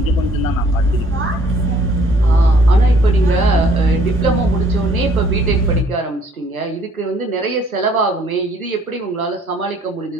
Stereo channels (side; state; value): both; normal; correlation 0.61